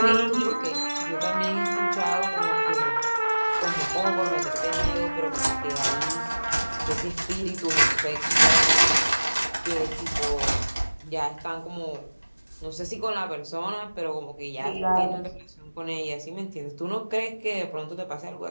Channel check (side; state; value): both; inverted; correlation -1.00